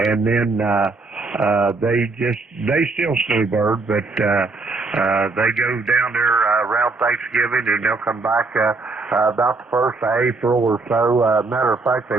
then they still snowbird, but they go down there around Thanksgiving, and they'll come back about the 1st of April or so. Matter of fact,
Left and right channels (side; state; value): left; quieter; 3.7 dB